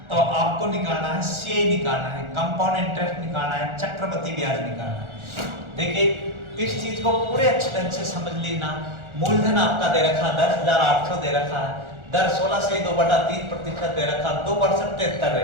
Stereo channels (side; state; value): left; late; 1.4 ms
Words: तो आपको निकालना है सीए निकालना है, कंपाउंड इंटरेस्ट निकालना है, चक्रवृद्धि ब्याज निकालना है। देखिए इस चीज को पूरे अच्छे ढंग से समझ लेना। मूलधन आपका दे रखा 10,800 दे रखा है, दर 16 से 2/3% दे रखा, 2 वर्ष 73